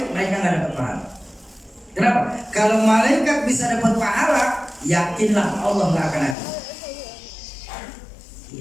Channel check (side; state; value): right; drops out; at 6.4 s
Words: mereka nggak dapat pahala. Kenapa? Kalau malaikat bisa dapat pahala, yakinlah Allah nggak akan ada.